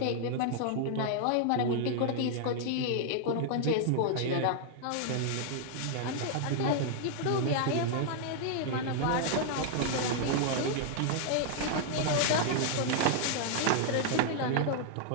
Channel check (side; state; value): both; different; correlation 0.00